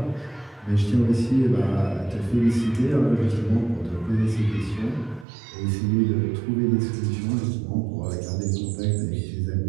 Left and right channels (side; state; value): left; drops out; at 5.2 s